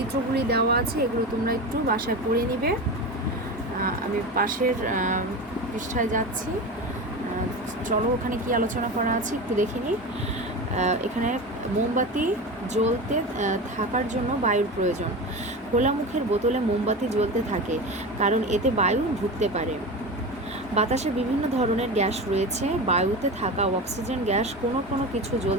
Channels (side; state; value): both; normal; correlation 0.26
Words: দেওয়া আছে, এগুলো তোমরা একটু বাসায় পড়ে নিবে। আমি পাশের পৃষ্ঠায় যাচ্ছি। চলো ওখানে কি আলোচনা করা আছে একটু দেখে নিই। এখানে মোমবাতি জ্বলতে থাকার জন্য বায়ুর প্রয়োজন। খোলা মুখের বোতলে মোমবাতি জ্বলতে থাকে কারণ এতে বায়ু ঢুকতে পারে। বাতাসে বিভিন্ন ধরনের গ্যাস রয়েছে, বায়ুতে থাকা অক্সিজেন গ্যাস কোনো কোনো কিছু